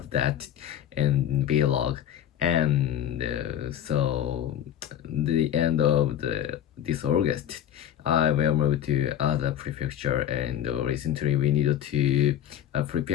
that in vlog, and so the end of this August, I will move to other prefecture, and recently we needed to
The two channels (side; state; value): right; quieter; 10.6 dB